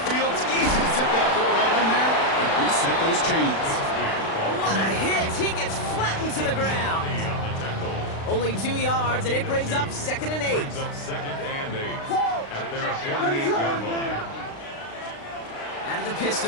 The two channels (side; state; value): right; late; 36 ms